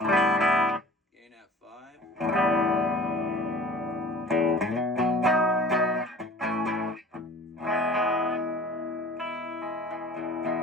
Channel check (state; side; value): normal; both; correlation 0.44